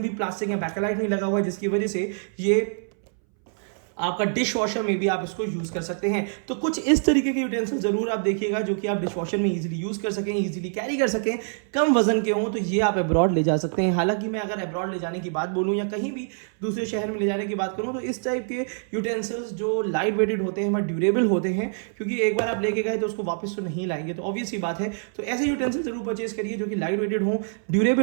प्लास्टिक या बैकलाइट नहीं लगा हुआ है, जिसकी वजह से ये आपका डिश वॉशर में भी आप इसको यूज कर सकते हैं। तो कुछ इस तरीके के यूटेंसिल जरूर आप देखिएगा, जो कि आप डिश वॉशर में इजीली यूज कर सकें, इजीली कैरी कर सकें, कम वजन के हों, तो ये आप अब्रॉड ले जा सकते हैं। हालांकि मैं अगर अब्रॉड ले जाने की बात बोलूं या कहीं भी दूसरे शहर में ले जाने की बात करूं, तो इस टाइप के यूटेंसिल्स जो लाइट वेटेड होते हैं, बट ड्यूरेबल होते हैं, क्योंकि एक बार आप लेके गए तो उसको वापस तो नहीं लाएंगे, तो ऑब्वियस ही बात है। तो ऐसे यूटेंसिल जरूर परचेज करिए जो कि लाइट वेटेड हो,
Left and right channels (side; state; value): left; silent; 61 dB below the other